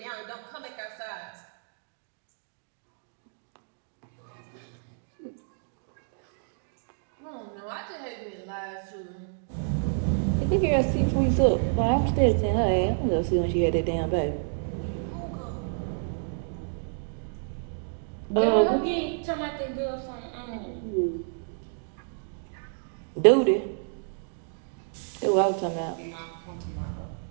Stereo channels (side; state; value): left; silent; digital silence